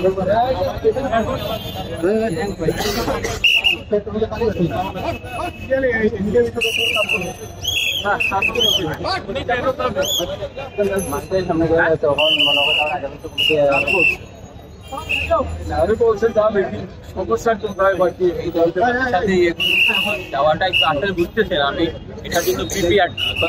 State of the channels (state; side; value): identical; both; correlation 1.00